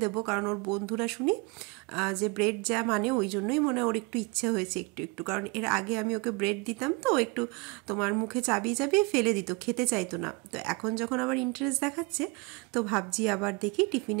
দেবো, কারণ ওর বন্ধুরা শুনি যে ব্রেড যা মানে, ওই জন্যই মনে ওর একটু ইচ্ছে হয়েছে একটু একটু, কারণ এর আগে আমি ওকে ব্রেড দিতাম তো একটু তোমার মুখে চাবিয়ে চাবিয়ে ফেলে দিত, খেতে চাইতো না। তো এখন যখন আবার ইন্টারেস্ট দেখাচ্ছে, তো ভাবছি আবার দেখি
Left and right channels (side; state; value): left; quieter; 27.3 dB